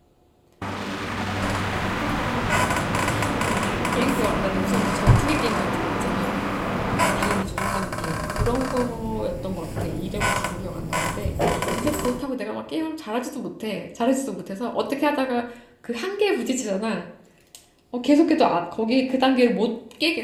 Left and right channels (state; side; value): identical; both; correlation 1.00